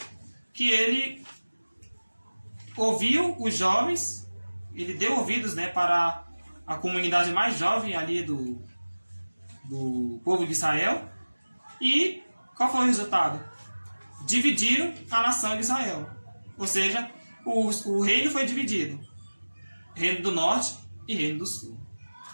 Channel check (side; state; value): both; inverted; correlation -1.00